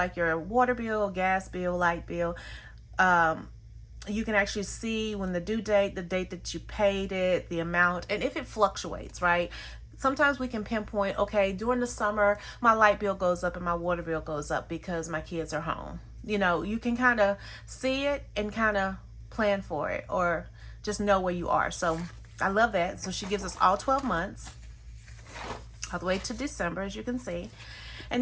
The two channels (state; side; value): identical; both; correlation 1.00